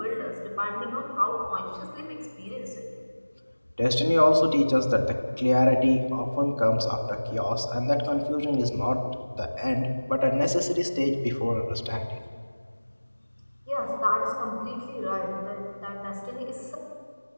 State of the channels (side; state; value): both; inverted; correlation -1.00